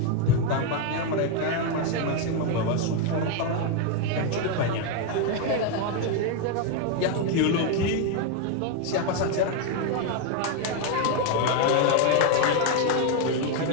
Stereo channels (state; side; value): different; both; correlation 0.01